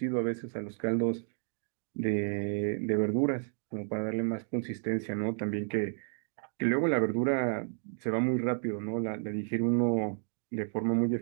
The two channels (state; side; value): silent; left; digital silence